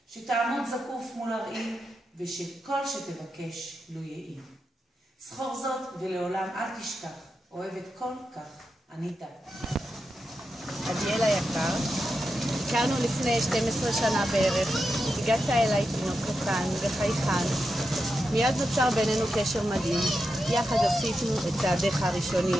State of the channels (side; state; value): both; normal; correlation 0.88